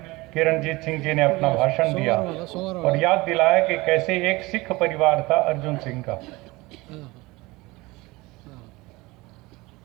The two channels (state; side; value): quieter; left; 21.9 dB